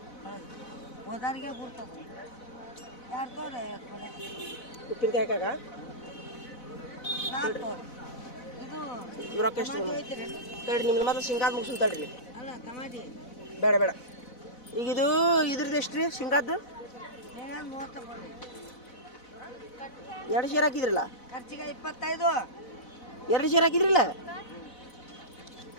ಹೋದಾರಿಗೆ ಗುರ್ತದ. ಯಾರು ತೋರಿ 50 ಕೊಡೆ ಉಪ್ಪಿನಕಾಯಿ ಹಾಕಾಗ 4 ತೋರಿ. ಇದು ರೊಕ್ಕ ಎಷ್ಟು? ತಡ್ರಿ ನಿಮ್ದು ಮಾತ್ರ ಶೇಂಗಾದ ಮುಗಿಸ್ ತಡ್ರಿ. ಅಲ್ಲ ಟಮಾಟಿ ಬೇಡ ಬೇಡ. ಈಗ ಇದ್ರದ್ದು ಎಷ್ಟು ರೀ ಶೇಂಗಾದ್ದು? 30 ರೂಪಾಯಿ. 2 ಸೇರ್ ಹಾಕಿದ್ರಲ್ಲ? ಖರ್ಚಿಗೆ 25. 2 ಸೇರ್ ಹಾಕಿದ್ರಲ್ಲ?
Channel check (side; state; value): right; late; 4.0 ms